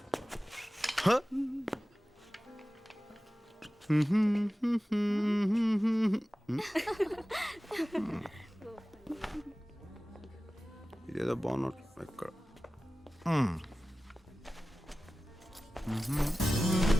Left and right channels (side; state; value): both; normal; correlation 0.96